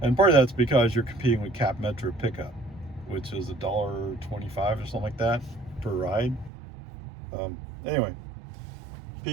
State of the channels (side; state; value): left; drops out; at 6.5 s